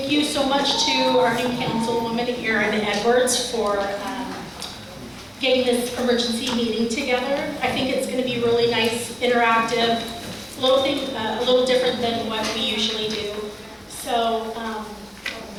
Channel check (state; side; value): identical; both; correlation 1.00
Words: you so much to our new councilwoman, Erin Edwards, for getting this emergency meeting together. I think it's going to be really nice, interactive, a little different than what we usually do. So